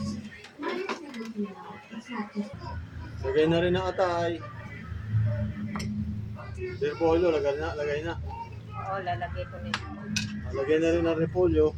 Lagay na rin ang atay. Repolyo, lagay na. Oo, lalagay ko nito. Lagay na rin ang repolyo.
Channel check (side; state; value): both; identical; correlation 1.00